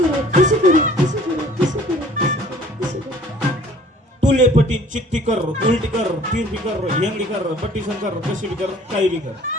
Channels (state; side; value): normal; both; correlation 0.53